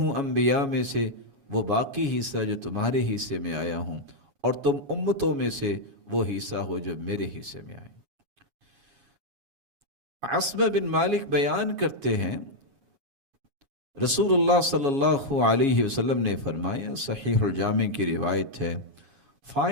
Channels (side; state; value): left; late; 7.2 ms